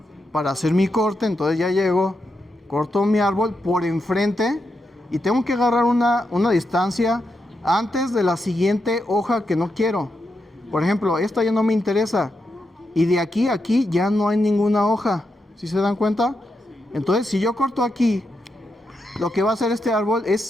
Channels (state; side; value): normal; both; correlation 0.85